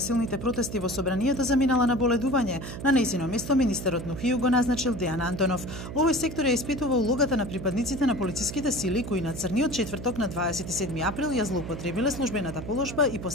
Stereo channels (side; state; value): right; noise; hum, 9 dB below the sound